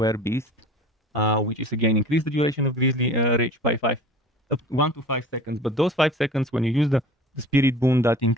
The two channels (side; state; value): both; normal; correlation 0.42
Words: which is again increase the duration of Grizzly Rage by 1 to 5 seconds. But those 5 seconds, when you use the Spirit Boon, that